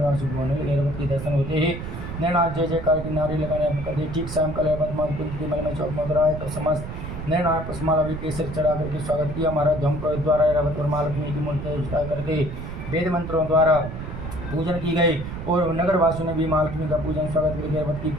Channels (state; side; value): noise; right; rumble, 8 dB below the sound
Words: शुभ होने लगी। ऐरावत के दर्शन होते ही नैनाथ जय जयकार की नारी लगाने कर दी। ठीक शाम कल ऐरावत माता कुंती के महल में चौक में उतरा है तो समस्त नैनाथ पुष्पमाला भी केसर चढ़ा करके स्वागत किया। महाराज धम द्वारा ऐरावत और महालक्ष्मी की मूर्ति विस्तार करके वेद मंत्रों द्वारा पूजन की गई और नगरवासियों ने भी महालक्ष्मी का पूजन स्वागत करके ऐरावत की